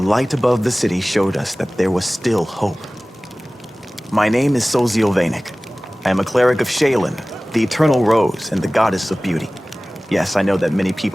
light above the city showed us that there was still hope. My name is Sozio Vanek. I am a cleric of Shaylin, the Eternal Rose and the Goddess of Beauty. Yes, I know that many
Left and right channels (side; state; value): both; normal; correlation 0.98